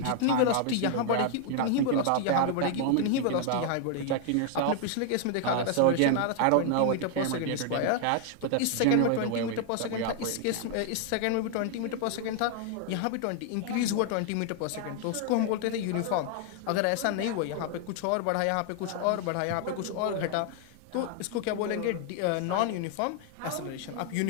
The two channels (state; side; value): different; both; correlation 0.00